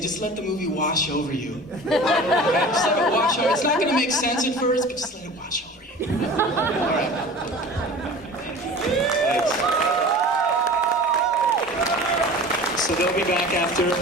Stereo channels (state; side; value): normal; both; correlation 0.39